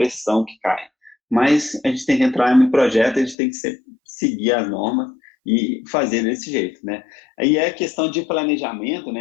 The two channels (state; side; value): drops out; right; at 3.4 s